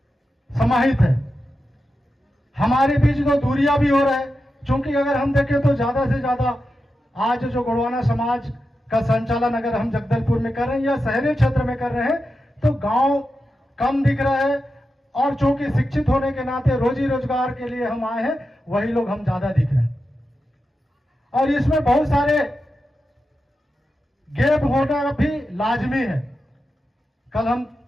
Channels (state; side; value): normal; both; correlation 0.90